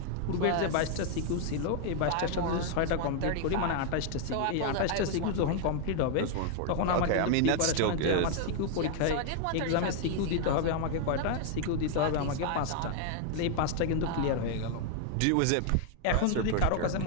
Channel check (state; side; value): different; both; correlation 0.00